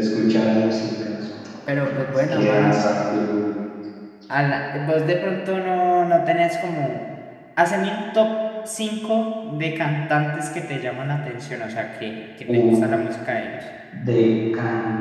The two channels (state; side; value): identical; both; correlation 1.00